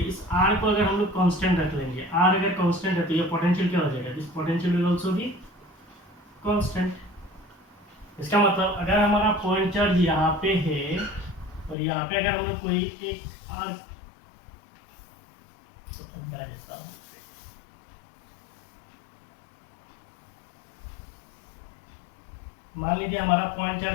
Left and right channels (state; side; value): drops out; right; at 11.8 s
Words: इस r को अगर हम लोग कांस्टेंट रख लेंगे, r अगर कांस्टेंट है तो ये पोटेंशियल क्या हो जाएगा? This potential will also be constant. इसका मतलब अगर हमारा पॉइंट चार्ज यहाँ पे है और यहाँ पे अगर हम लोग कोई एक आर मान लीजिए हमारा पॉइंट